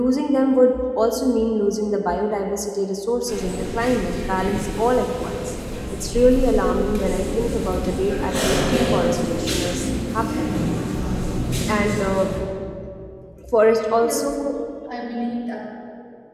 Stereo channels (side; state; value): both; identical; correlation 1.00